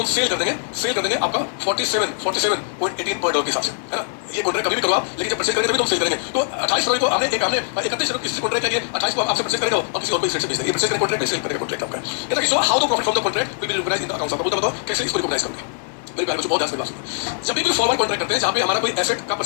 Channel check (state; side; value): silent; right; digital silence